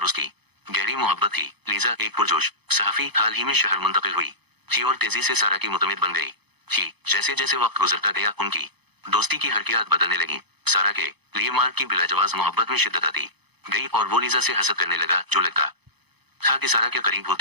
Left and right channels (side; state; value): left; late; 0.98 ms